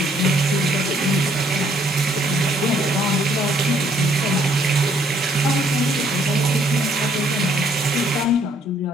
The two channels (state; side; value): normal; both; correlation 0.65